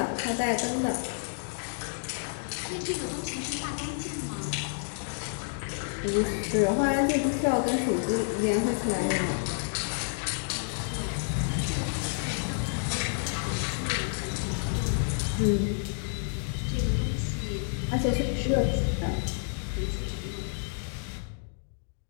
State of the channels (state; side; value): silent; right; digital silence